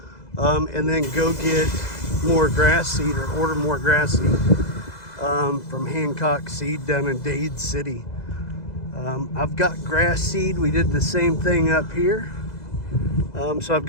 and then go get more grass seed or order more grass seed from Hancock Seed down in Dade City. I've got grass seed. We did the same thing up here. So I've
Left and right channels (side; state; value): right; late; 2.0 ms